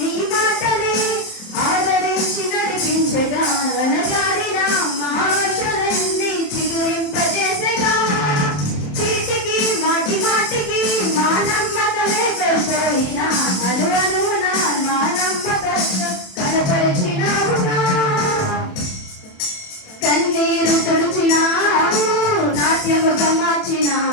మాటలే ఆదరించి నడిపించగా అనగారిన మా ఆశలన్నీ చిగురింపజేసగా చీటికి మాటి మాటికి మా నమ్మకమే కోల్పోయినా అను అనువున మా నమ్మకత్వం కనపరిచినావుగా కన్నీరు తుడిచినావు నాట్యముగా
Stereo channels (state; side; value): late; right; 27 ms